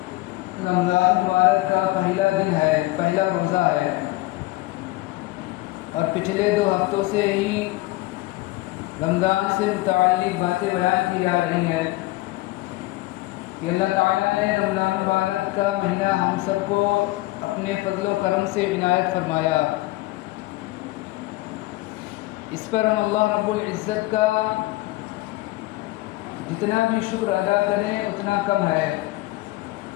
رمضان مبارک کا پہلا دن ہے، پہلا روزہ ہے، اور پچھلے 2 ہفتوں سے ہی رمضان سے متعلق باتیں بیان کی جا رہی ہیں کہ اللہ تعالیٰ نے رمضان مبارک کا مہینہ ہم سب کو اپنے فضل و کرم سے عنایت فرمایا. اس پر ہم اللہ رب العزت کا جتنا بھی شکر ادا کریں اتنا کم ہے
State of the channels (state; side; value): quieter; right; 19.5 dB